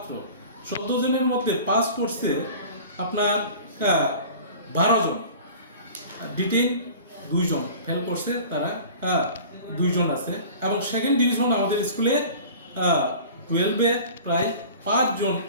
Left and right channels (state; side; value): inverted; both; correlation -0.41